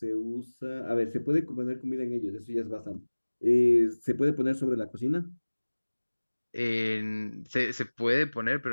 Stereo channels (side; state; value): both; inverted; correlation -1.00